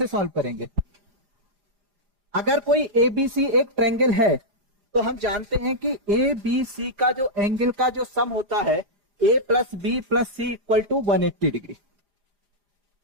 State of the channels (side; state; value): left; late; 4.9 ms